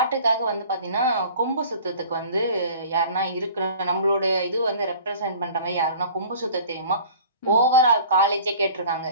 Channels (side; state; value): both; inverted; correlation -0.45